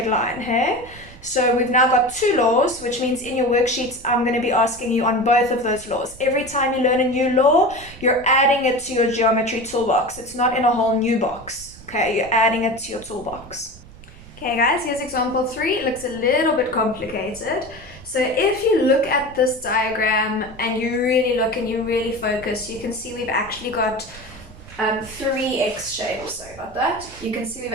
line, hey? So we've now got two laws, which means in your worksheets, I'm going to be asking you on both of those laws. Every time you learn a new law, you're adding it to your geometry toolbox. It's not in a whole new box, okay? You're adding it to your toolbox. Okay guys, here's example 3. It looks a little bit complicated. So if you look at this diagram and you really look and you really focus, you can see we've actually got 3 X shapes. Sorry about that. You can see we've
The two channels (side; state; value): right; noise; rumble, 19 dB below the sound